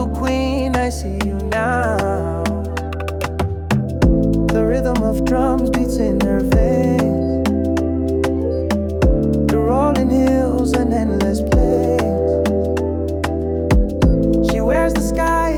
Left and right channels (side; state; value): both; identical; correlation 1.00